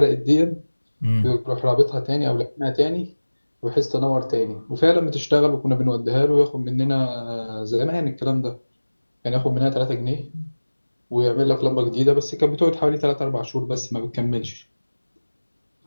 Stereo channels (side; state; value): both; inverted; correlation -1.00